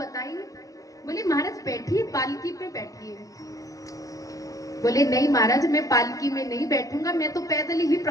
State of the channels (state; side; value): late; right; 0.17 ms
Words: बोले महाराज बैठिए पालकी पे बैठिए। बोले नहीं महाराज मैं पालकी में नहीं बैठूंगा, मैं तो पैदल ही